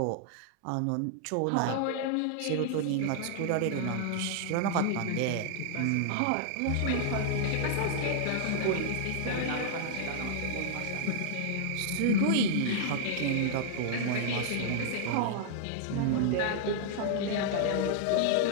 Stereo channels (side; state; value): both; different; correlation -0.01